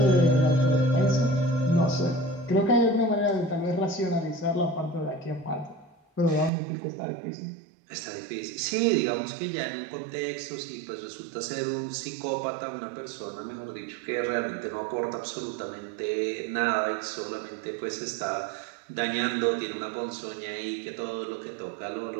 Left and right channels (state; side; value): drops out; left; at 6.5 s